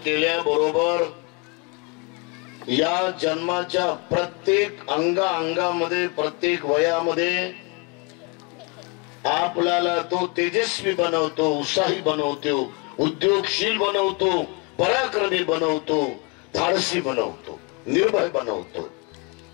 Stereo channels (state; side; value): quieter; right; 30.5 dB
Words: केल्याबरोबर या जन्माच्या प्रत्येक अंगामध्ये प्रत्येक वयामध्ये आपल्याला तो तेजस्वी बनवतो, उत्साही बनवतो, उद्योगशील बनवतो, पराक्रमी बनवतो, धाडसी बनवतो, निर्भय बनवतो।